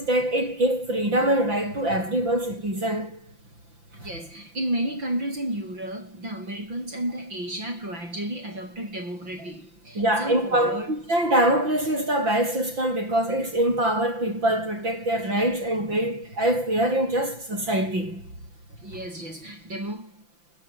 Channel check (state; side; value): late; left; 5.9 ms